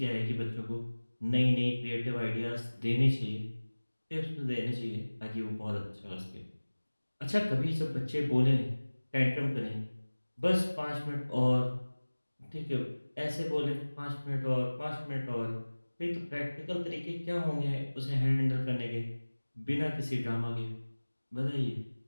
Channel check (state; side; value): inverted; both; correlation -1.00